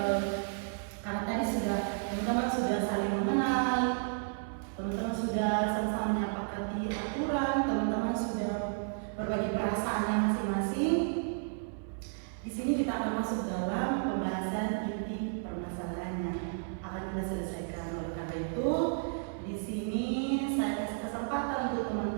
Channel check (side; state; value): left; silent; 56 dB below the other